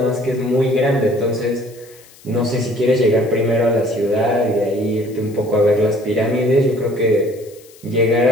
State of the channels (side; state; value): left; noise; hiss, 25 dB below the sound